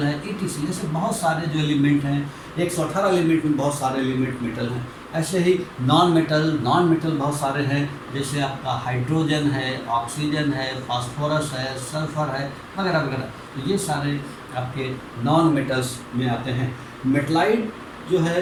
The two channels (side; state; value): both; identical; correlation 1.00